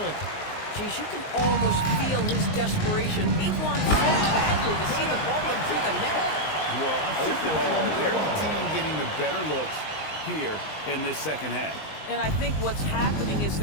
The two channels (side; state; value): right; late; 19 ms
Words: Geez, you can almost feel his desperation. He wants so badly to see the ball go through the net. Well, overall, they're the team getting the better looks here in this second half. And I think what's happening is